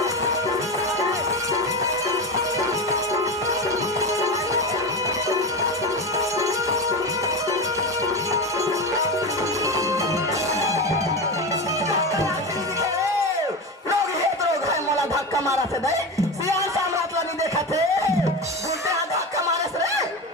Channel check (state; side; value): normal; both; correlation 0.21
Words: धक्का मारा थे दे सियान साम्राज्य ला नहीं देखा थे बोलते हैं धक्का मारे से रे